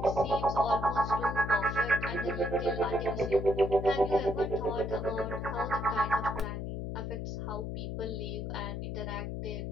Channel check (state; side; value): noise; left; hum, 4 dB below the sound